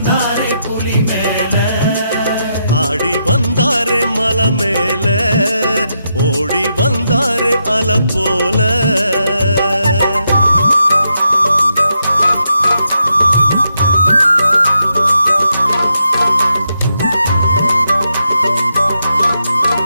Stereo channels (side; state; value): both; inverted; correlation -0.82